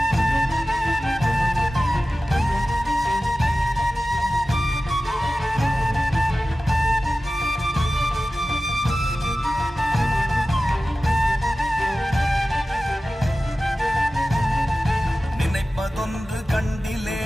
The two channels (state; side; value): normal; both; correlation 0.95